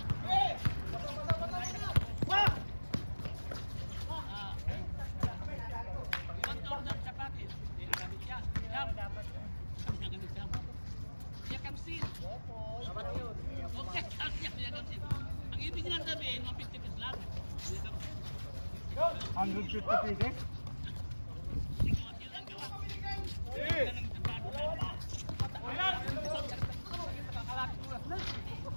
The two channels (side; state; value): both; inverted; correlation -1.00